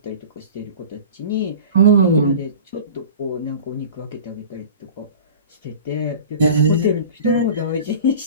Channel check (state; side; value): inverted; both; correlation -0.38